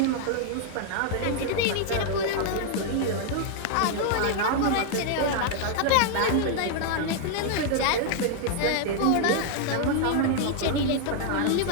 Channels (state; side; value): different; both; correlation 0.00